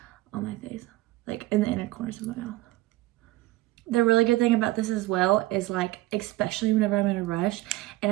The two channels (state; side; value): quieter; left; 18.2 dB